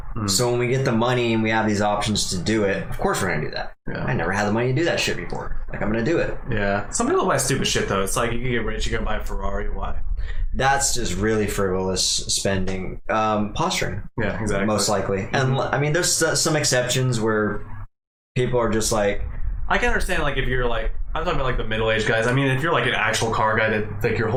So when we get the money and we have these options to do it, of course we're gonna do that. Yeah. I never had the money to do that shit before. Like, I'm gonna do it. Yeah. Some people buy stupid shit though. It's like you can get rich, you're gonna buy a Ferrari. Why? That's just really frivolous spending. Posturing. Yeah, exactly. Most likely. And I mean, there's some exceptions where people are just like, I can understand, like, if you're like, I'm talking about like the middle-aged guys. I mean, if you're like an actual car guy that like your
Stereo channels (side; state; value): both; identical; correlation 1.00